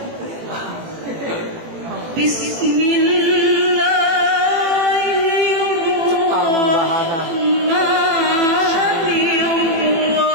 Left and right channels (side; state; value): left; late; 18 ms